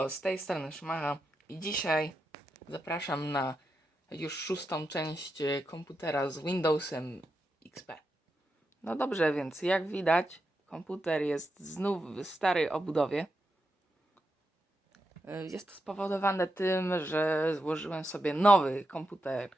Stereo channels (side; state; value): both; normal; correlation 0.86